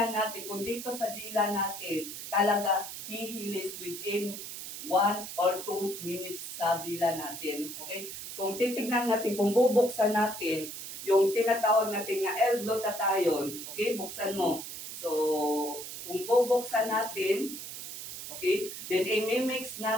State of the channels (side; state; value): right; noise; hiss, 9 dB below the sound